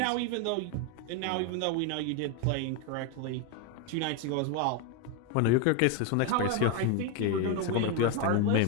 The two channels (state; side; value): different; both; correlation 0.02